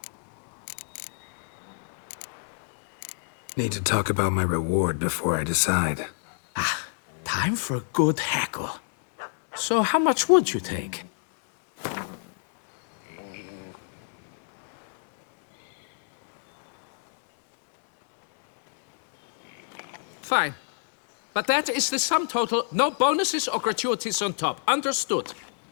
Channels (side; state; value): right; silent; digital silence